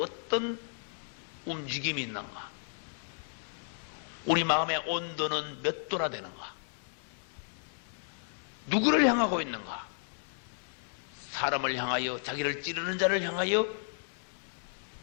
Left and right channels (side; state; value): right; silent; digital silence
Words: 움직임이 있는가? 우리 마음의 온도는 몇 도나 되는가? 누구를 향하고 있는가? 사람을 향하여, 자기를 찌르는 자를 향하여